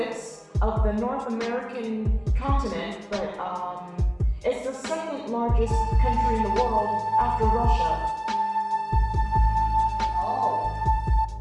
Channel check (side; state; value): both; identical; correlation 1.00